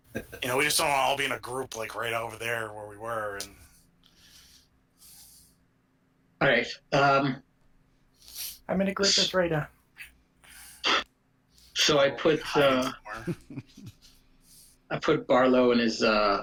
want to all be in a group like right over there where we were. And All right. I'm in a group that's right now. So I put Barlow in his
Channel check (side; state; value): both; identical; correlation 1.00